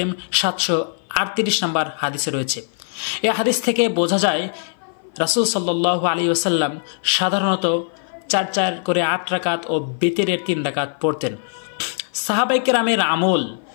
738 নম্বর হাদিসে রয়েছে। এই হাদিস থেকে বোঝা যায় রাসূল সাল্লাল্লাহু আলাইহি ওয়াসাল্লাম সাধারণত 4 করে 8 রাকাত ও বিতরের 3 রাকাত পড়তেন। সাহাবায়ে কেরামের আমল,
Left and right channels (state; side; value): silent; right; 56 dB below the other